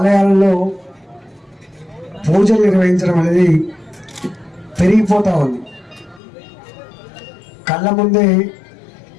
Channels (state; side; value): drops out; right; at 6.2 s